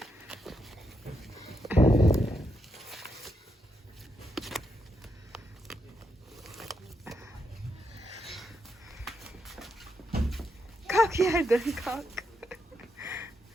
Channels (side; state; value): both; normal; correlation 0.81